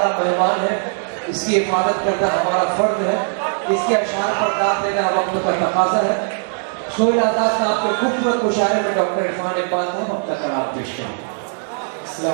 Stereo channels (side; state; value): left; silent; 57 dB below the other